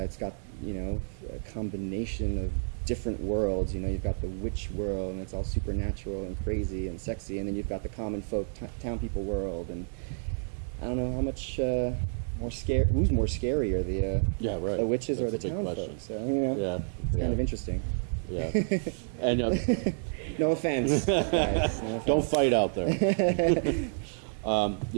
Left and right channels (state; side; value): silent; left; 58 dB below the other